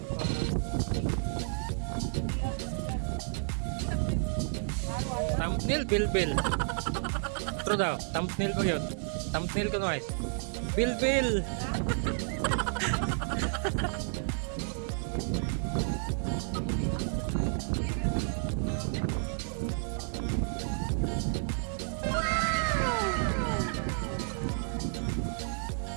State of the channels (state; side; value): silent; left; 57 dB below the other